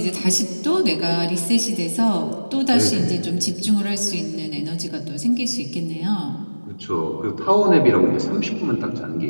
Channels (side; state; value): both; inverted; correlation -1.00